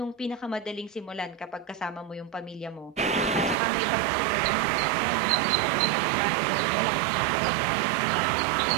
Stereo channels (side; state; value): left; drops out; at 3.6 s